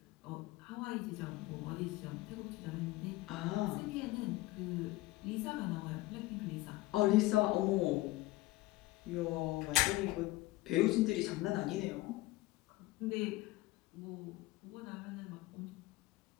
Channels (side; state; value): right; quieter; 19.4 dB